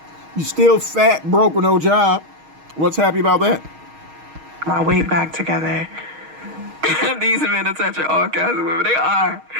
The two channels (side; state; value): left; late; 6.4 ms